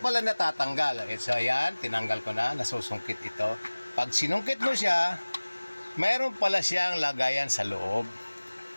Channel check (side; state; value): both; inverted; correlation -1.00